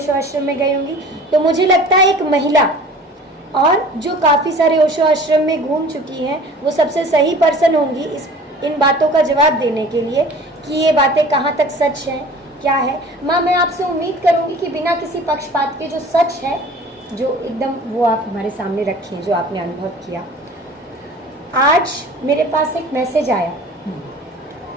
आश्रम में गई होंगी। तो मुझे लगता है एक महिला और जो काफ़ी सारे ओशो आश्रम में घूम चुकी हैं वो सबसे सही पर्सन होंगी इन बातों का जवाब देने के लिए कि ये बातें कहाँ तक सच हैं, क्या है। माँ, मैं आपसे उम्मीद करूँगी कि बिना किसी पक्षपात के जो सच है, जो एकदम, वो आप हमारे सामने रखें, जो आपने अनुभव किया। आज मेरे पास एक मैसेज आया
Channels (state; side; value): normal; both; correlation 0.44